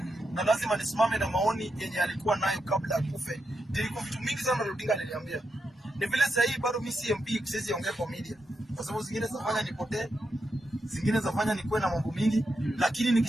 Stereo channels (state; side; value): normal; both; correlation 0.85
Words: Na lazima nisimame na maoni yenye alikuwa nayo kabla ya kufe. Nilikuwa vitu mingi sana Raila Odinga aliniambia. Ni vile sasa hii bado mimi si MP, siwezi ongea kwa media. Kwa sababu zingine zafanya nipotee, zingine zafanya nikuwe na mambo mingi, lakini